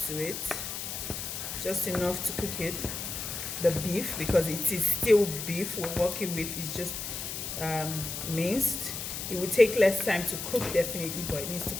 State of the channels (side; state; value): left; noise; hiss, 5 dB below the sound